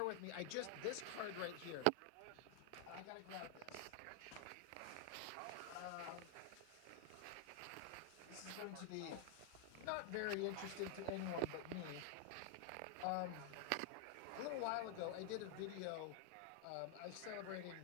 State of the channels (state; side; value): different; both; correlation 0.00